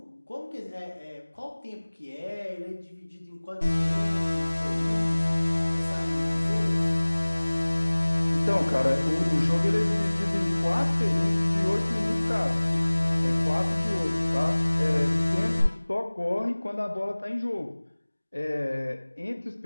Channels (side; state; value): both; inverted; correlation -1.00